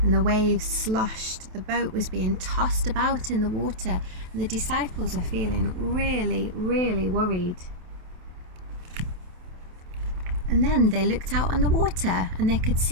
and the waves sloshed. The boat was being tossed about in the water, and the disciples are feeling really, really worried. And then they looked out on the water and they could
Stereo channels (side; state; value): left; late; 28 ms